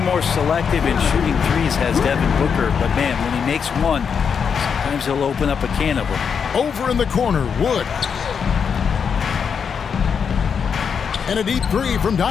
more selective in shooting threes, has Devin Booker, but man, when he makes one, sometimes he'll open up a can of them. Over in the corner, Wood. And a deep three from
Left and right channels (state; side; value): quieter; right; 6.6 dB